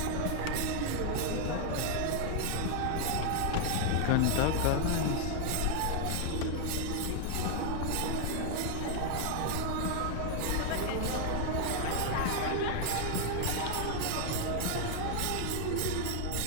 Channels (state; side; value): different; both; correlation 0.00